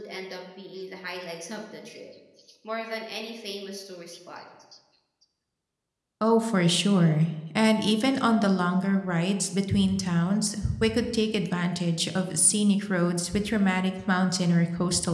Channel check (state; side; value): identical; both; correlation 1.00